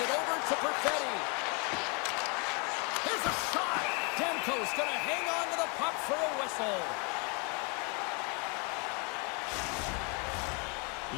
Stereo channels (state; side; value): quieter; right; 33.8 dB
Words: over to Perfetti. There's a shot. Demko's going to hang on to the puck for a whistle.